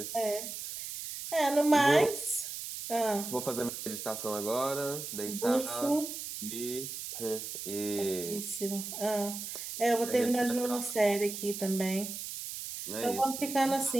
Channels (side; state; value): right; noise; hiss, 7 dB below the sound